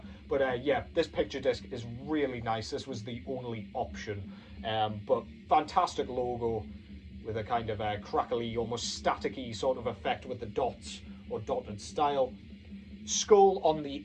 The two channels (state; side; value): identical; both; correlation 1.00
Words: But yeah, this picture disc is really nice. This was the only option. But fantastic logo with a kind of a crackly, almost staticky sort of effect with the dots or dotted style. Skull on the